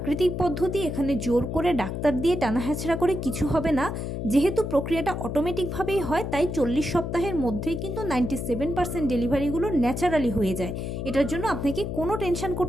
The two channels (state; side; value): noise; left; hum, 4 dB below the sound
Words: পদ্ধতি, এখানে জোর করে ডাক্তার দিয়ে টানা হেঁচড়া করে কিছু হবে না। যেহেতু প্রক্রিয়াটা অটোমেটিকভাবেই হয়, তাই 40 সপ্তাহের মধ্যেই কিন্তু 97% ডেলিভারিগুলো ন্যাচারালি হয়ে যায়। এটার জন্য আপনাকে কোনো টেনশন